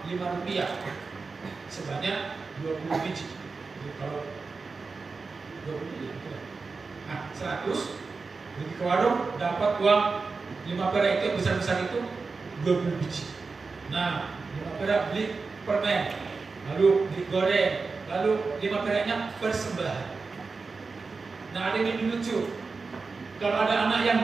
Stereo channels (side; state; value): left; quieter; 4.3 dB